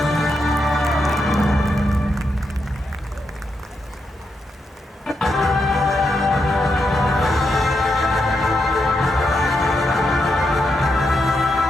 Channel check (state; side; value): normal; both; correlation 0.83